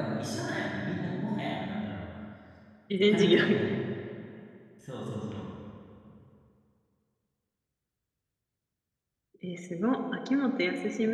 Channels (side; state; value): both; identical; correlation 1.00